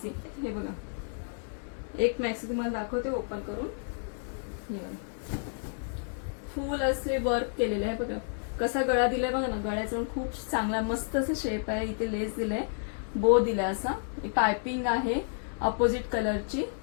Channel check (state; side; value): silent; right; digital silence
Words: हे बघा एक मॅक्सी तुम्हाला दाखवते ओपन करून. फुल असे वर्क केलेले आहे बघा, कसा गळा दिलाय बघा ना. गळ्याचा खूप चांगला मस्त असं शेप आहे. इथे लेस दिलाय, बो दिलाय, असा पायपिंग आहे अपोजिट कलरची.